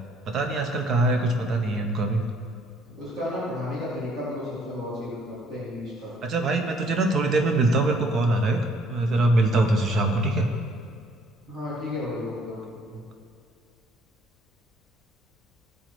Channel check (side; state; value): both; normal; correlation 0.62